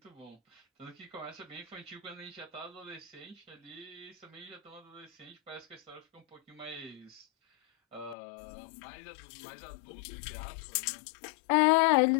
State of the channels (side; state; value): right; drops out; at 8.2 s